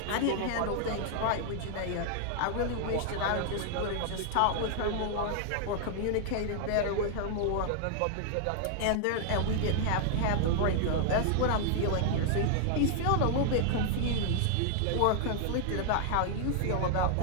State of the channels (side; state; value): both; different; correlation 0.00